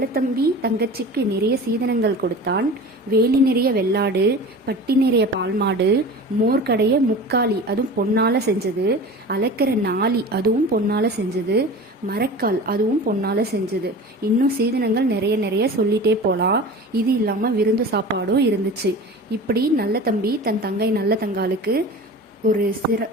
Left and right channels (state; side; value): normal; both; correlation 0.36